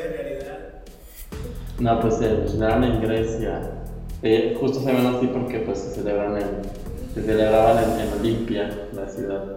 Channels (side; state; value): both; identical; correlation 1.00